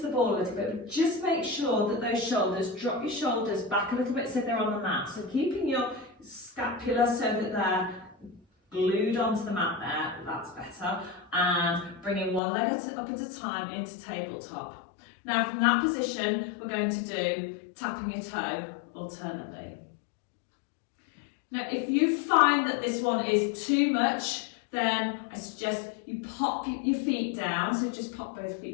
ball a little bit, but just make sure that those shoulders, drop your shoulders back a little bit so they're on the mat. So keeping your scapula so that they're glued onto the mat there, that's better, and bringing one leg up at a time into tabletop. Now from that position, we're going to do tapping your toe alternately. Now if you find that this one is too much then I suggest you pop your feet down, so just pop both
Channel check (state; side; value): drops out; right; at 12.4 s